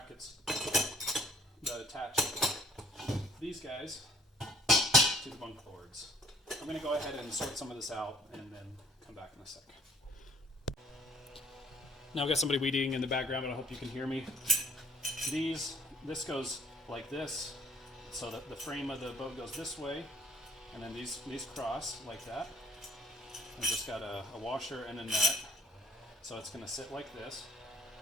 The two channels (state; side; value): normal; both; correlation 0.58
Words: that attach these guys to the bunk boards. I'm going to go ahead and sort some of this out and then come back in a sec. Now I've got somebody weeding in the background, but I hope you can hear me. This goes like this, so that the frame of the boat goes this way, and then these cross like that. I've just got a washer and a nut, so it's going to sit like this,